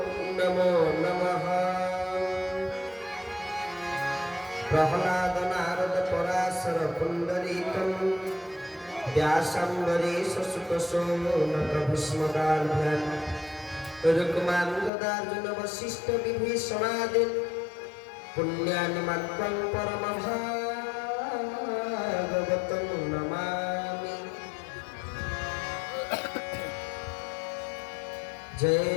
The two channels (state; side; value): drops out; right; at 14.9 s